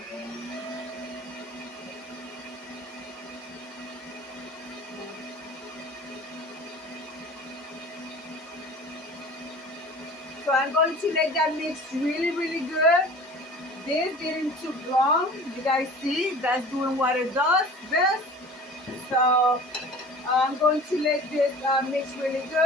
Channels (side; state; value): both; normal; correlation 0.43